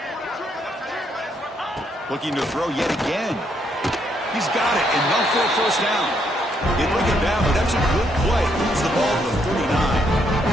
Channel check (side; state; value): both; normal; correlation 0.74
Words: Looking to throw yet again. He's got it, enough for a 1st down. They bring him down, but that's a good play. Moves the ball to the 39.